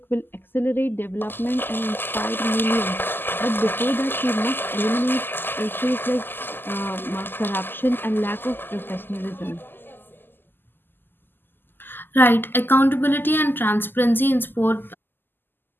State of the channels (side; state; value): right; late; 0.095 ms